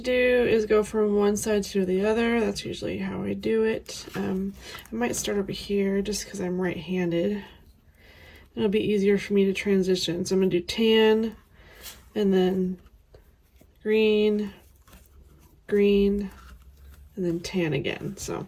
do is go from one side to the other. That's usually how I do it. I might start over here just because I'm right-handed. It'll be easier for me to transition. So I'm gonna do tan, and then green, green, and then tan again. So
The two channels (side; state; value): both; identical; correlation 1.00